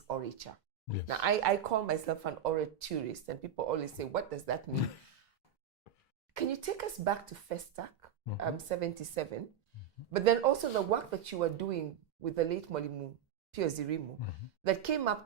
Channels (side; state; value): left; quieter; 8.4 dB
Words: orature. Yes. Now, I call myself an oraturist, and people always say, what does that mean? Can you take us back to Festac, 77, but then also the work that you were doing with the late Mwalimu Pio Zirimu that came up